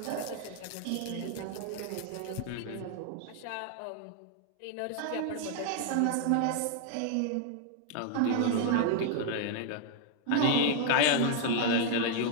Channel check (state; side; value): different; both; correlation 0.00